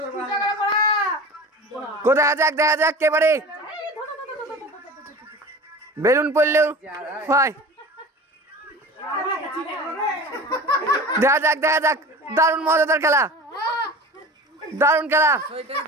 কোথায় যাক দেখা যাক কে পারে। বেলুন পড়লেও হয়। দেখা যাক দেখা যাক। দারুণ মজাদার খেলা, দারুণ খেলা।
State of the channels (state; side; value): normal; both; correlation 0.36